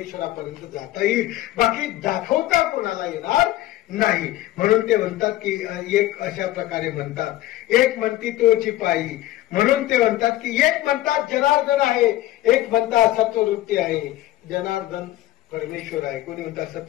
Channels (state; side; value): quieter; right; 15.4 dB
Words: जाता येईल, बाकी दाखवता कोणाला येणार नाही. म्हणून ते म्हणतात की एक अशा प्रकारे म्हणतात, एक म्हणती तोची पायी. म्हणून ते म्हणतात की एक म्हणतात जनार्दन आहे, एक म्हणतात सत्ववृत्ती आहे. जनार्दन परमेश्वर आहे, कोणी म्हणतात